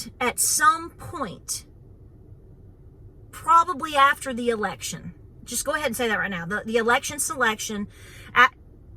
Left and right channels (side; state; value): both; identical; correlation 1.00